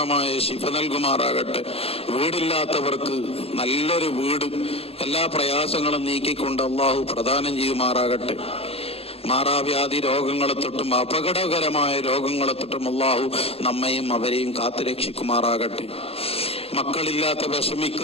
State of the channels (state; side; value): late; right; 0.29 ms